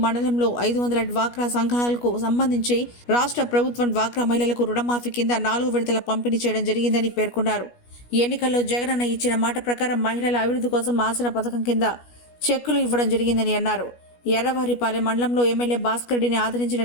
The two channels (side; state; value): right; late; 17 ms